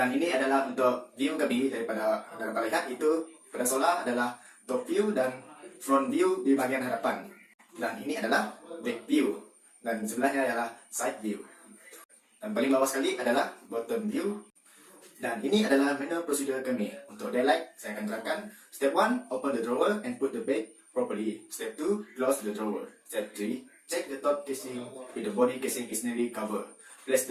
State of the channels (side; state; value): both; identical; correlation 1.00